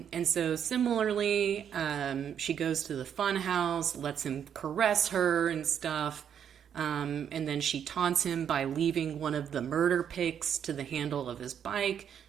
so similarly, she goes to the fun house, lets him caress her and stuff. And then she taunts him by leaving one of the murder picks to the handle of his bike,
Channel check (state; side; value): quieter; left; 8.6 dB